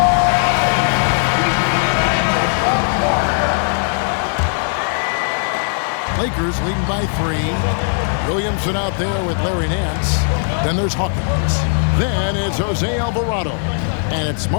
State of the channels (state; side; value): silent; right; 57 dB below the other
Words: Lakers leading by 3. Williamson out there with Larry Nance. Then there's Hawkins. Then it's Jose Alvarado. And it's